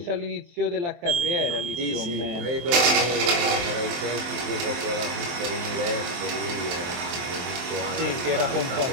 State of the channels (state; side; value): late; left; 23 ms